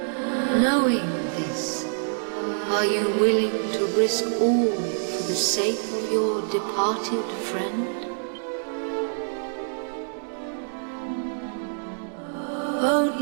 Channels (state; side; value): silent; left; digital silence